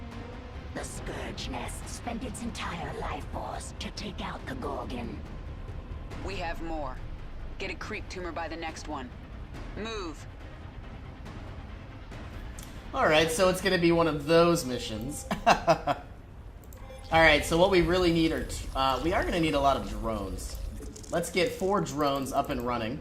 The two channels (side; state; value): both; identical; correlation 1.00